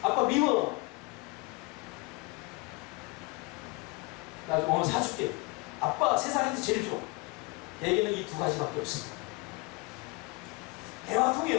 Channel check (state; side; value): quieter; right; 26.8 dB